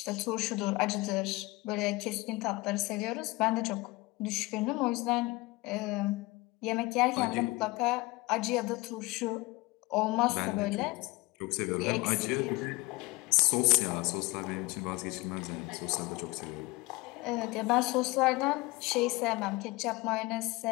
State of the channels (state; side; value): quieter; right; 22.4 dB